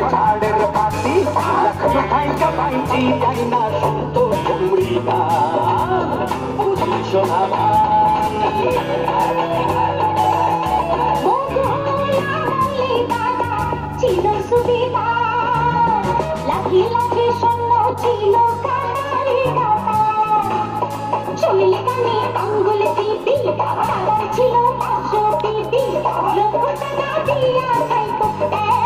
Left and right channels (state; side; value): identical; both; correlation 1.00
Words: ঝাড়ের পাতি লক্ষ্য খাইকা পাইছি যাই না শুনতো কুমড়ি গান বুঝলি সোনা ছিল সুবিধা লাখি লাখি শূন্য ছিল চলে কানে আঙ্গুল টিপি তারা ছিল 500 টিপি লক্ষ টাকা দিয়া খাইতো